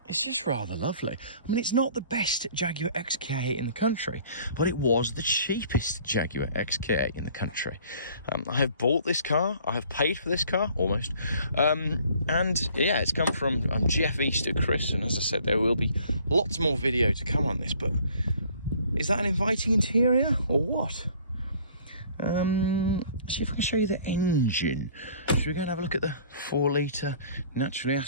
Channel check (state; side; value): inverted; both; correlation -0.54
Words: just rather lovely. I mean, it's not the best Jaguar XK8 in the country, but it was the cheapest Jaguar XK8 in the country. I have bought this car. I have paid for this car, almost. And yeah, it's come from Geoff Easter, Chris. And as I said, there will be lots more video to come on this, but is that an inviting interior or what? See if I can show you the engine. Should we go and have a look at the 4 litre naturally